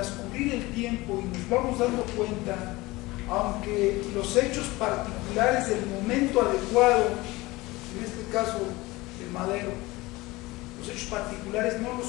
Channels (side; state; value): right; quieter; 20.9 dB